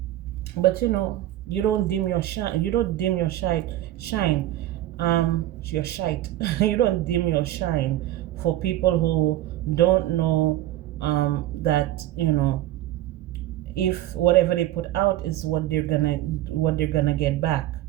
But you don't dim your shine. You don't dim your shine. Your shite. You don't dim your shine for people who don't know that if whatever they put out is what they're gonna get back.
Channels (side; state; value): left; quieter; 14.1 dB